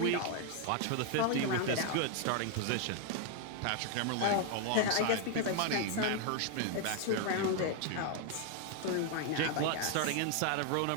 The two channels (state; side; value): different; both; correlation 0.00